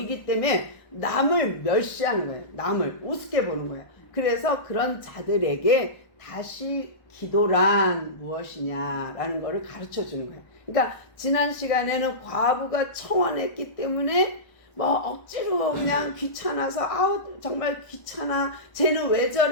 때문에 남을 멸시하는 거예요. 남을 우습게 보는 거예요. 그래서 그런 자들에게 다시 기도란 무엇이냐라는 거를 가르쳐 주는 거예요. 그러니까 지난 시간에는 과부가 청원했기 때문에 뭐 억지로 그냥 귀찮아서 정말 귀찮아, 쟤는 왜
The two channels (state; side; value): late; right; 1.3 ms